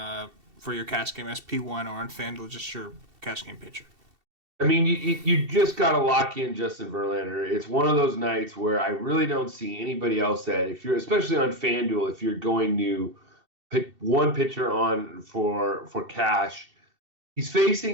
for your cash game SP1 or on FanDuel, just your cash game pitcher. I mean, you just got to lock in Justin Verlander. It's one of those nights where I really don't see anybody else that, if you're, especially on FanDuel, if you're going to pick one pitcher on for cash, he's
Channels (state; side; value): late; left; 2.7 ms